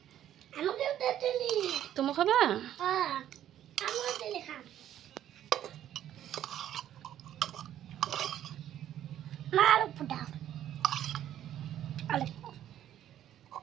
আমাকে দাও জেলি। তুমি খাবা? হ্যাঁ, আমাকে জেলি খাও। মার পুটা। আলে।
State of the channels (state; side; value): quieter; left; 11.5 dB